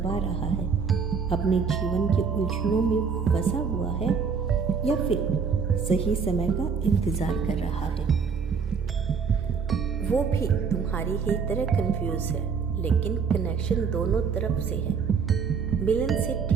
रहा है, अपने जीवन के उलझनों में फंसा हुआ है, या फिर सही समय का इंतज़ार कर रहा है। वो भी तुम्हारी ही तरह कंफ्यूज है, लेकिन कनेक्शन दोनों तरफ से है। मिलन से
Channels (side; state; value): left; quieter; 5.8 dB